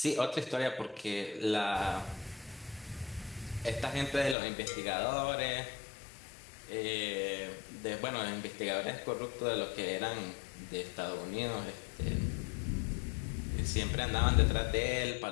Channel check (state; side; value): drops out; right; at 4.4 s